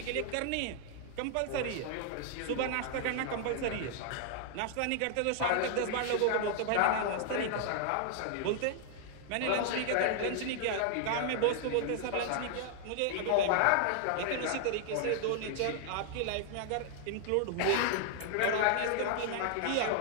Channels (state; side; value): different; both; correlation -0.01